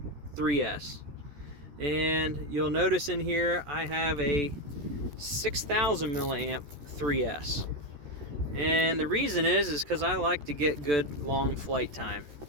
3S. And you'll notice in here I have a 6000 milliamp 3S. And the reason is because I like to get good long flight time.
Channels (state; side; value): late; left; 14 ms